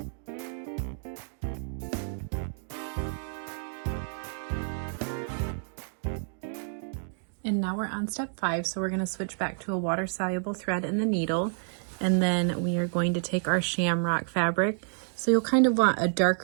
And now we're on step 5, so we're going to switch back to a water-soluble thread in the needle, and then we are going to take our Shamrock fabric. So you'll kind of want a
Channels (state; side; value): silent; left; 58 dB below the other